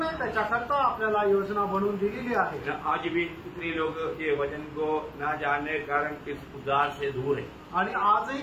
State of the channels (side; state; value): both; identical; correlation 1.00